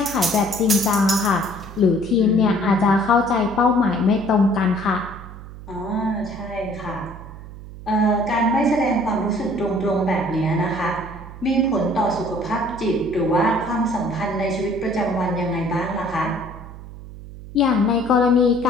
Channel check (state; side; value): noise; right; hum, 14 dB below the sound